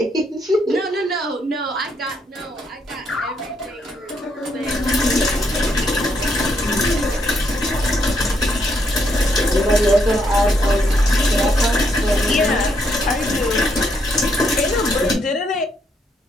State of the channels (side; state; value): both; normal; correlation 0.75